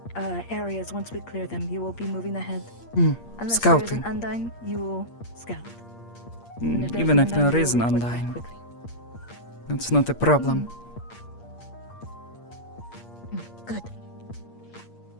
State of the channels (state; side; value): late; right; 8.5 ms